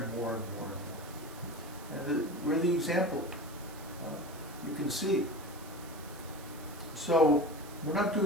more and more and more. And we're the example. You can see. So we're not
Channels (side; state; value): right; noise; hiss, 18 dB below the sound